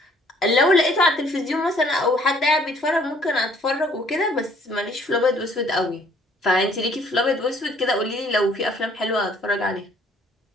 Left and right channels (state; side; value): normal; both; correlation 0.60